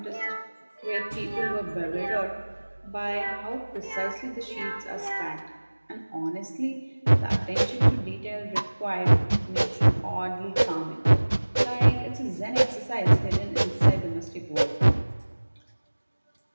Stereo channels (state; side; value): inverted; both; correlation -1.00